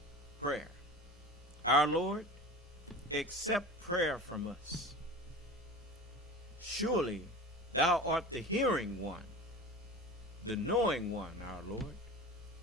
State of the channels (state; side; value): normal; both; correlation 0.34